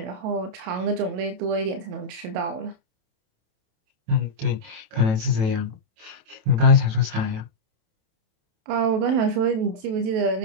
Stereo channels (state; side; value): late; left; 27 ms